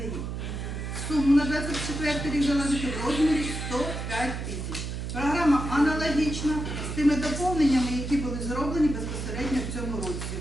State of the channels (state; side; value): noise; right; hum, 5 dB below the sound